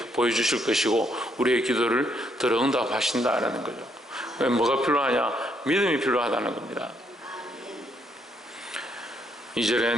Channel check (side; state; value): both; normal; correlation 0.73